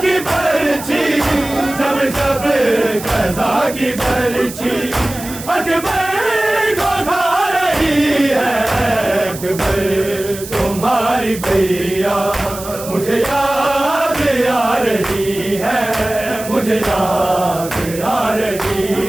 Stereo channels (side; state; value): right; noise; hiss, 13 dB below the sound